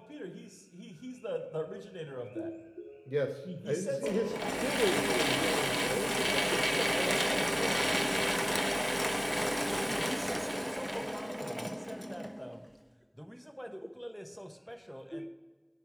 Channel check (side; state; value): both; identical; correlation 1.00